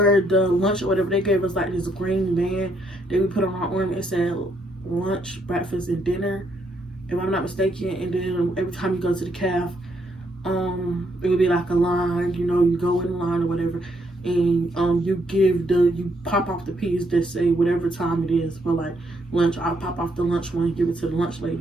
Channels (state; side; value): normal; both; correlation 0.74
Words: the lunch or whatever, they gave us like this green band that we put on our arm. It said lunch, breakfast, and dinner, if I'm not mistaken. And then every time you go to the caf, it would be like a line, you know, you go in line or whatever, and you pop off the piece that say whatever time it is for like lunch. I'll pop off the lunch one and give it to the lunch